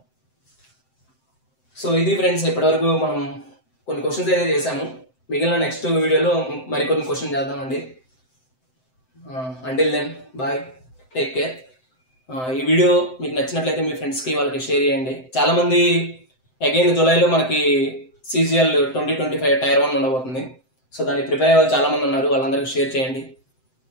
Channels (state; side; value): late; right; 7.8 ms